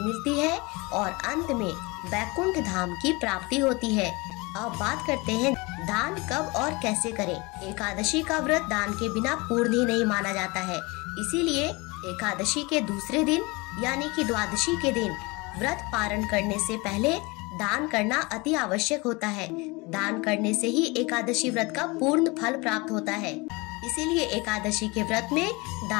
मिलती है और अंत में वैकुंठ धाम की प्राप्ति होती है। अब बात करते हैं दान कब और कैसे करें। एकादशी का व्रत दान के बिना पूर्ण ही नहीं माना जाता है, इसीलिए एकादशी के दूसरे दिन यानी कि द्वादशी के दिन व्रत पारण करने से पहले दान करना अति आवश्यक होता है। दान करने से ही एकादशी व्रत का पूर्ण फल प्राप्त होता है। इसीलिए एकादशी के व्रत में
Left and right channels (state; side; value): quieter; right; 25.6 dB